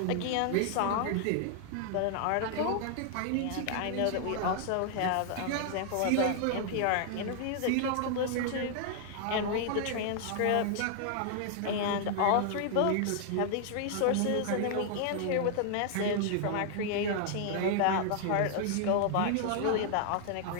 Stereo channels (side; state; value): both; different; correlation 0.00